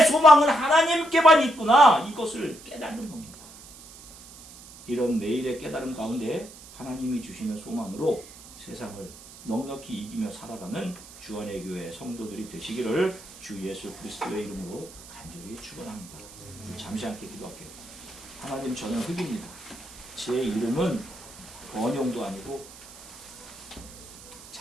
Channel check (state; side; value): noise; right; hiss, 18 dB below the sound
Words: 소망은 하나님께만 있구나. 이것을 깨닫는 겁니다. 이런 매일의 깨달음 가운데 하나님이 주시는 소망으로 세상을 넉넉히 이기며 살아가는 주안의 교회 성도들이 되시기를 주 예수 그리스도의 이름으로 간절히 축원합니다. 잠시 함께 기도할게요. 하나님, 저는 흑입니다. 제 이름은 번영도 아니고